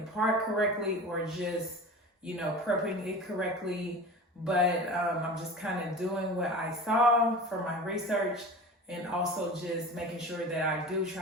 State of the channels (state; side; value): normal; both; correlation 0.34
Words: correctly or just, you know, prepping it correctly. But I'm just kind of doing what I saw from my research and also just making sure that I do